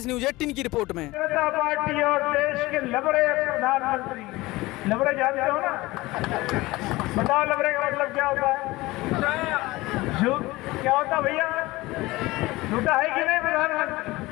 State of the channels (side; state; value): right; quieter; 20.2 dB